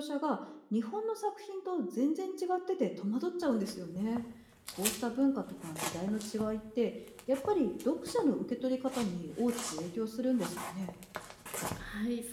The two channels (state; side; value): identical; both; correlation 1.00